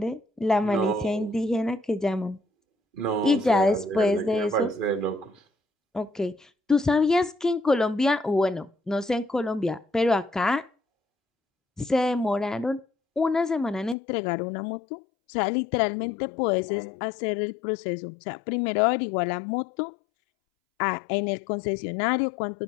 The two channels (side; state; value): right; drops out; at 14.0 s